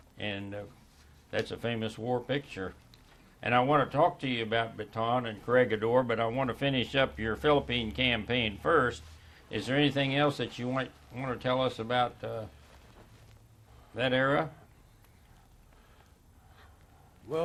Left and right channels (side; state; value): both; identical; correlation 1.00